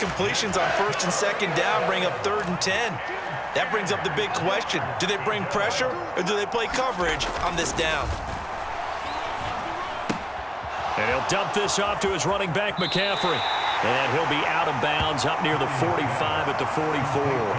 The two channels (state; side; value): identical; both; correlation 1.00